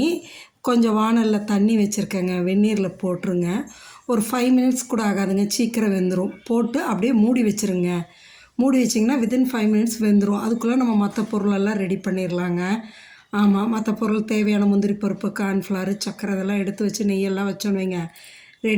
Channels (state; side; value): identical; both; correlation 1.00